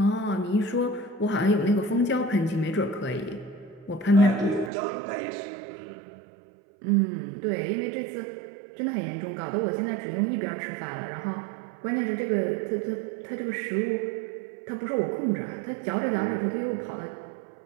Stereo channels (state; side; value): drops out; left; at 4.7 s